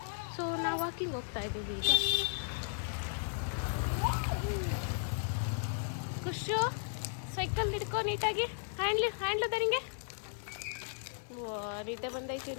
ಸೊ ನಾವು ವಾಕಿಂಗ್ ಹೋಗ್ತಾ ಇದ್ದೀವಿ ಈಗ. ಖುಷು ಸೈಕಲ್ ಹಿಡ್ಕೊ ನೀಟಾಗಿ. ಹ್ಯಾಂಡ್ಲು ದರಿಂಗೆ. ಓ ನಿದ್ದೆ ಬಂದೈತಿ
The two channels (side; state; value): right; silent; digital silence